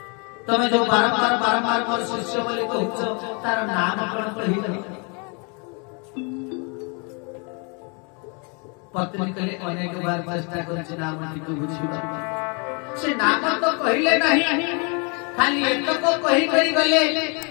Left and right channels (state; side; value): quieter; right; 34.0 dB